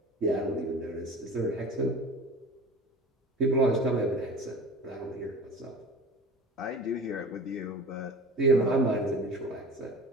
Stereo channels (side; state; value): both; normal; correlation 0.38